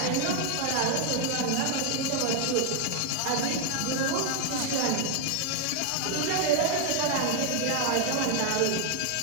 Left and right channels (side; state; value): both; different; correlation 0.00